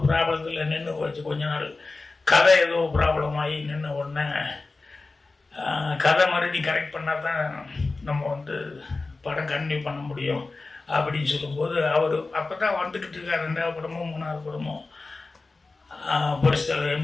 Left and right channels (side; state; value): right; quieter; 3.6 dB